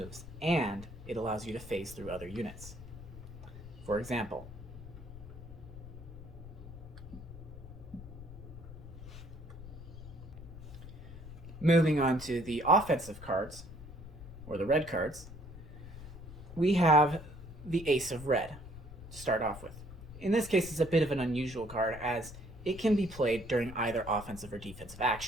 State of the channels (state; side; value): noise; left; rumble, 13 dB below the sound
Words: and it allows you to phase through other units. For example, moving on to the offensive cards, or the red cards, we have the Ace of Red to start off with. In this case, it's a bit of an unusual card as it can be played during either offensive or defensive